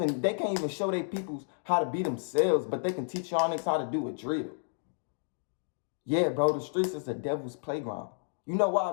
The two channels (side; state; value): right; silent; digital silence